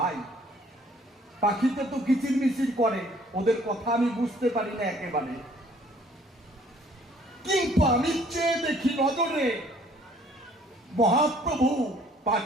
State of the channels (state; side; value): normal; both; correlation 0.59